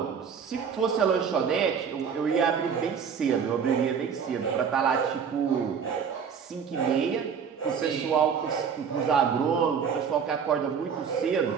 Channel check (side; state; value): left; quieter; 6.8 dB